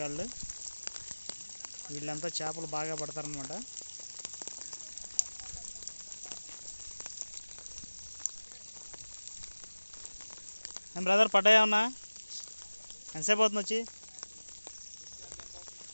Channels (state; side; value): inverted; both; correlation -1.00